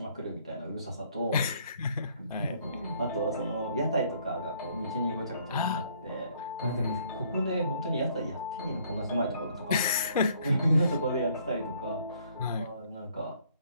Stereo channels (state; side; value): inverted; both; correlation -0.63